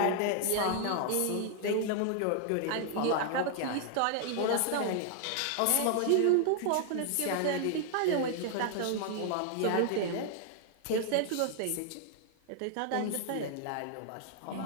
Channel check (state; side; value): different; both; correlation 0.00